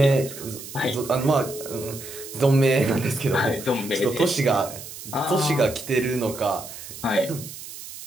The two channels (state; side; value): noise; right; hiss, 13 dB below the sound